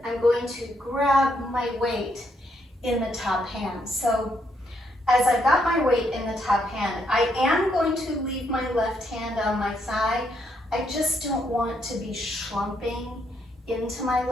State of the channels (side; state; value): both; normal; correlation 0.75